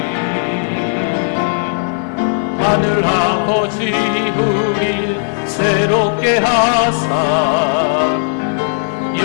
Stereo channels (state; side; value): silent; right; digital silence